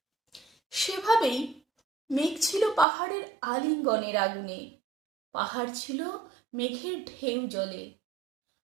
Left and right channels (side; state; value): left; drops out; at 2.9 s